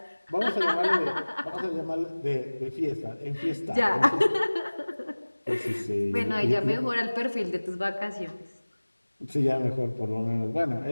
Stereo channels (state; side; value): inverted; both; correlation -1.00